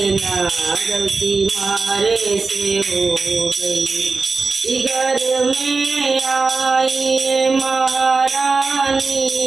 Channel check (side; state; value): left; quieter; 4.2 dB